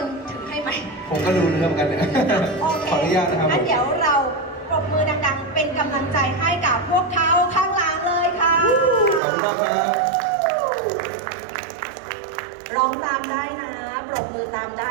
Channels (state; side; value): drops out; left; at 9.2 s